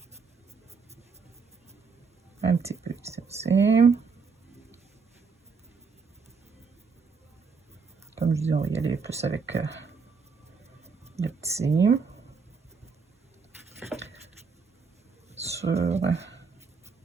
Un petit peu ici aussi. Comme je dis, on va y aller plus avec le petit. Sur le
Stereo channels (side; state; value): left; quieter; 5.1 dB